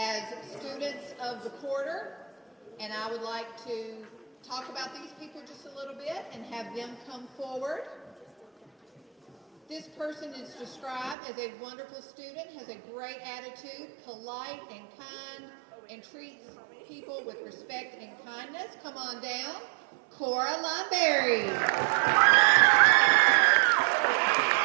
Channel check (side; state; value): left; drops out; at 11.2 s